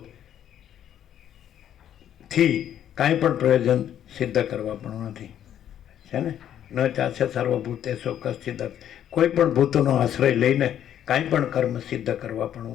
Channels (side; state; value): right; quieter; 10.4 dB